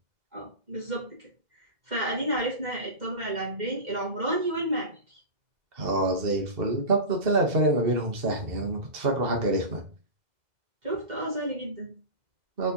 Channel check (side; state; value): left; late; 2.0 ms